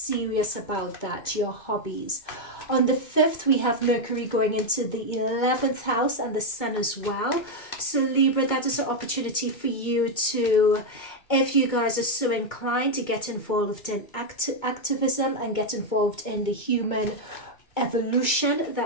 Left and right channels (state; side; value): late; right; 2.2 ms